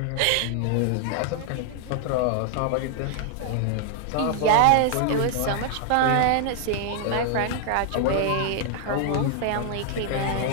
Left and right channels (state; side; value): different; both; correlation 0.00